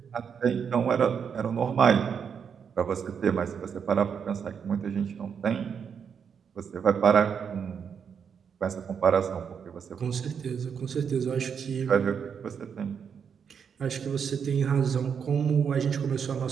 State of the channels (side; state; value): left; quieter; 7.0 dB